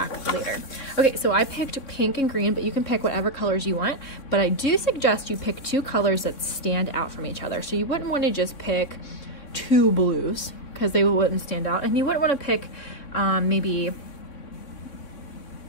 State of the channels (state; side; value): late; right; 3.6 ms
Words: later. Okay, so I picked pink and green, but you can pick whatever colors you want. But I do suggest you pick 2 colors that stand out from each other. So you wouldn't want to just pick 2 blues because they wouldn't stand out. And you wouldn't want to pick maybe,